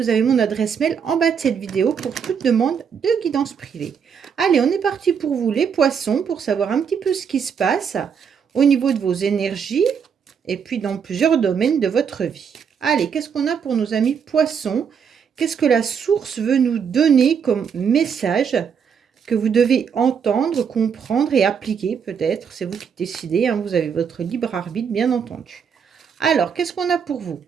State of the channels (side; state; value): left; quieter; 6.9 dB